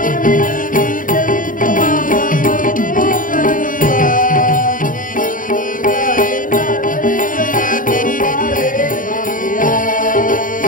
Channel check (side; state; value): right; late; 0.39 ms